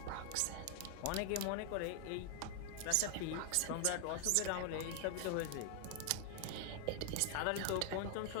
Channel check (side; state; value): both; different; correlation 0.00